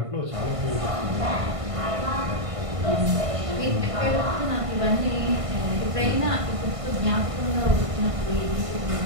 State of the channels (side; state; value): left; late; 1.5 ms